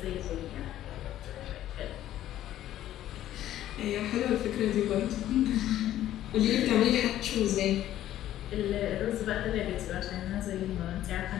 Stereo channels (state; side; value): quieter; right; 12.8 dB